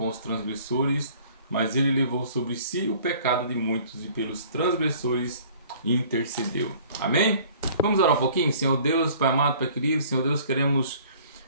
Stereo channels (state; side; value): inverted; both; correlation -0.52